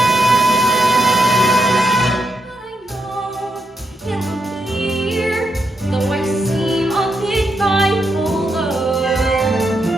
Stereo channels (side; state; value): both; normal; correlation 0.82